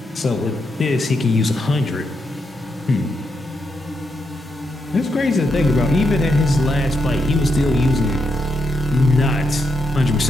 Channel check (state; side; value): normal; both; correlation 0.82